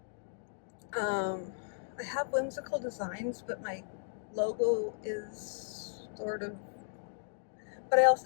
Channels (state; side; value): silent; right; digital silence